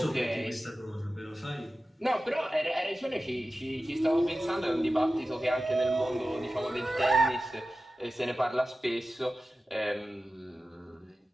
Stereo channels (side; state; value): both; normal; correlation 0.94